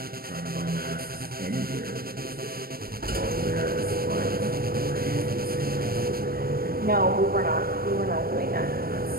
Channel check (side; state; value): left; late; 0.44 ms